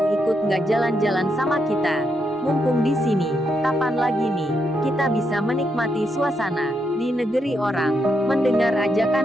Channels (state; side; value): normal; both; correlation 0.80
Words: ikut nggak jalan-jalan sama kita? Mumpung di sini, kapan lagi nih, kita bisa menikmati suasana di negeri orang. Mendengar